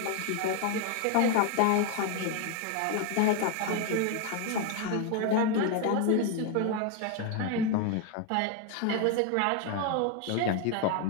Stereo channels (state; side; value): different; both; correlation 0.01